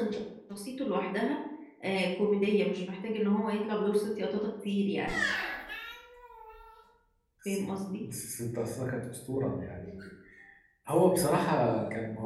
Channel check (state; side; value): identical; both; correlation 1.00